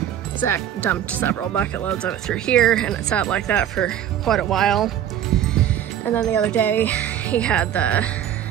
Zach dumped several bucket loads of it through here, and it sat like that for quite a while. And then the other day he had the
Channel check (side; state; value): left; quieter; 10.5 dB